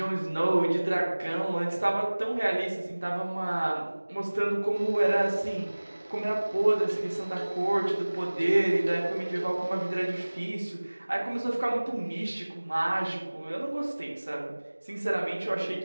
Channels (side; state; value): both; inverted; correlation -1.00